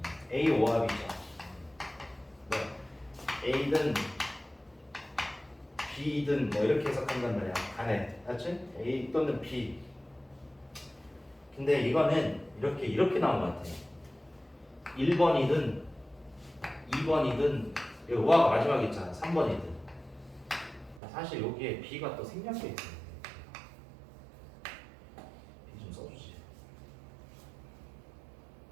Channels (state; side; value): drops out; left; at 21.0 s